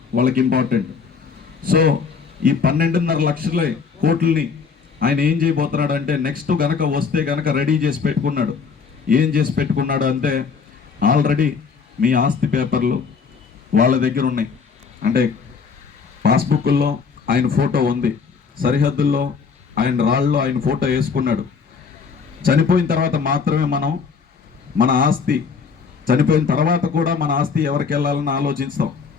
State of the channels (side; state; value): right; quieter; 5.6 dB